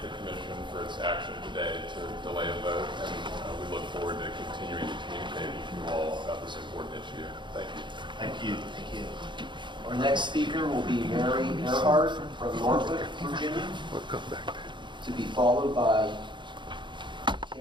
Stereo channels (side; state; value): left; late; 0.23 ms